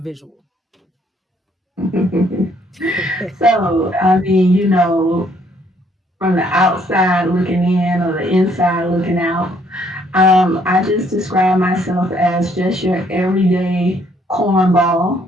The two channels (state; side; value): normal; both; correlation 0.67